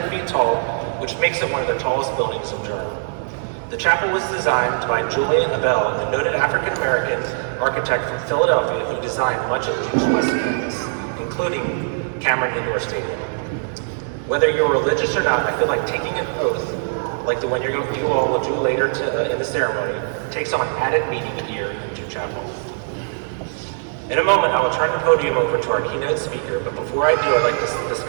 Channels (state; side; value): silent; left; digital silence